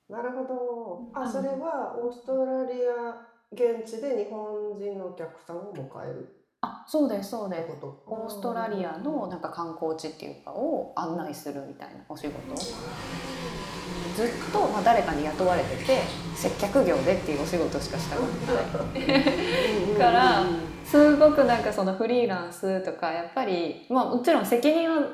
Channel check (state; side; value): identical; both; correlation 1.00